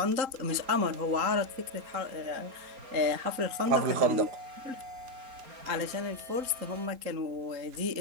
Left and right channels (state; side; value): late; left; 3.8 ms